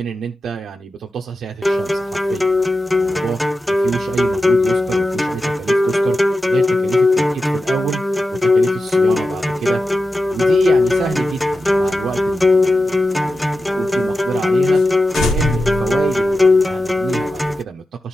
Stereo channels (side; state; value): both; normal; correlation 0.91